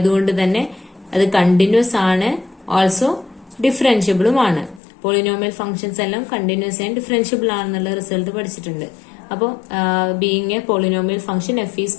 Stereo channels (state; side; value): drops out; right; at 4.8 s